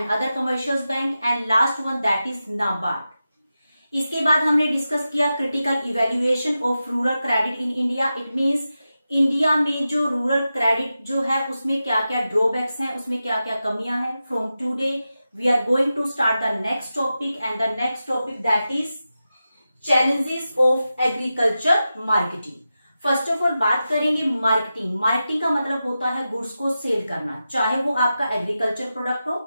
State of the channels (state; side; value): inverted; both; correlation -0.92